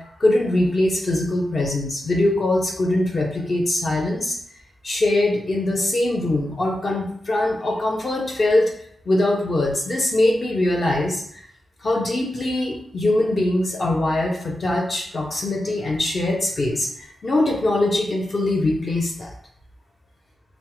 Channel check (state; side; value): normal; both; correlation 0.90